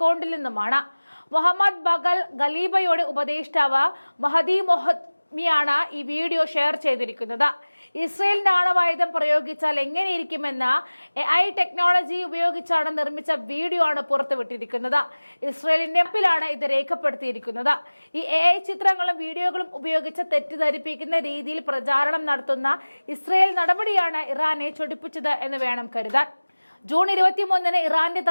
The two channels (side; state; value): both; inverted; correlation -1.00